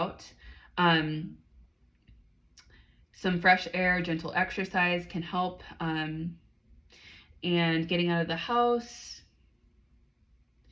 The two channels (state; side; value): identical; both; correlation 1.00